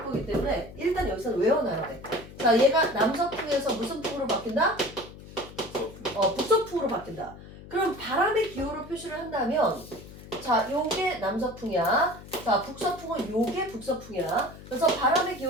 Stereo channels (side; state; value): left; noise; hum, 16 dB below the sound